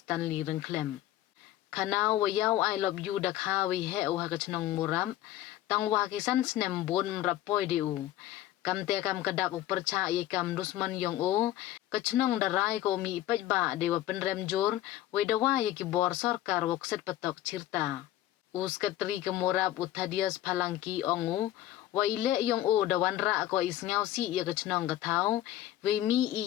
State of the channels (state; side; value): quieter; right; 13.7 dB